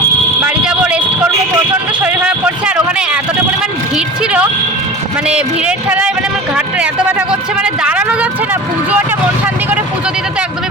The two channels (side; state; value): both; normal; correlation 0.35